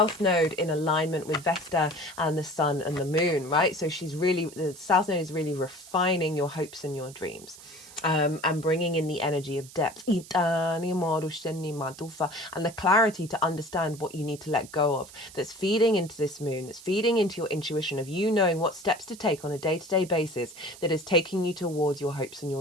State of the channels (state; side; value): noise; right; hiss, 18 dB below the sound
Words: Node in alignment with Vesta and the Sun and the Moon, right? So the South Node is really refining your hopes and your dreams. And bringing in the energy of depth and the clarity to understand what you need to let go of, that's feeding into this moon, that's feeding into your intuition of you knowing what steps to take on a day-to-day basis that is taking you towards your hopes and